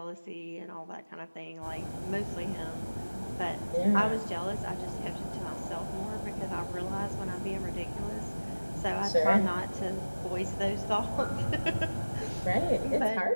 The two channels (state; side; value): inverted; both; correlation -1.00